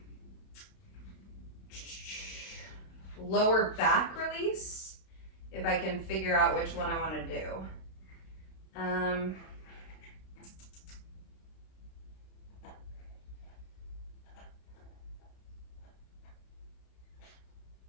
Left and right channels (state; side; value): late; right; 32 ms